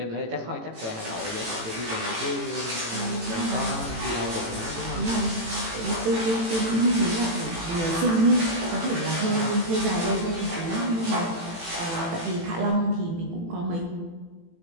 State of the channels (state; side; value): late; left; 18 ms